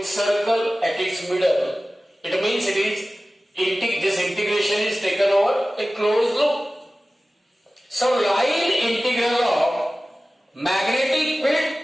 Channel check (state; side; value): normal; both; correlation 0.96